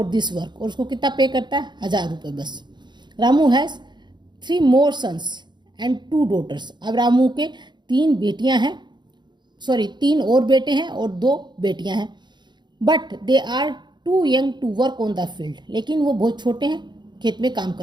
this work, और उसको कितना पे करता है, 1000 रुपये बस। Ramu has 3 more sons and 2 daughters। अब रामू के 3 बेटियां हैं, 3 और बेटे हैं और 2 बेटियां हैं। But they are too young to work on the field, लेकिन वो बहुत छोटे हैं खेत में काम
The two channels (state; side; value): late; left; 0.21 ms